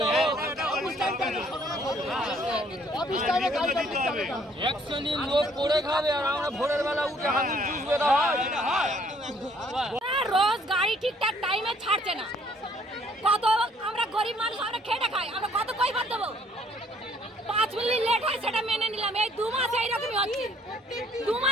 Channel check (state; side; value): normal; both; correlation 0.62